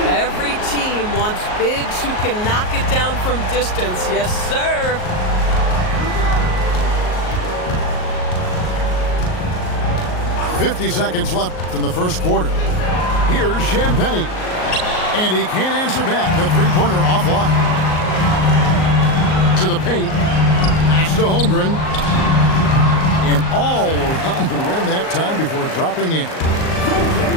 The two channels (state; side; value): late; right; 38 ms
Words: Every team wants bigs who can knock it down from distance. Yes, sir. .50 left in the first quarter. Here's Champagnie. And he can't answer back. The three-pointer offline. To the paint. Pass to Holmgren. And all around the rim that time before dropping in.